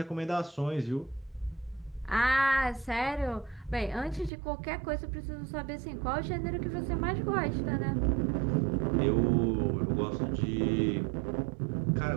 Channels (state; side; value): drops out; left; at 4.3 s